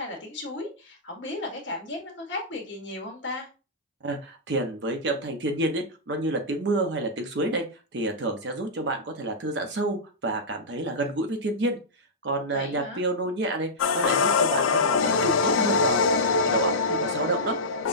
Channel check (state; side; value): normal; both; correlation -0.12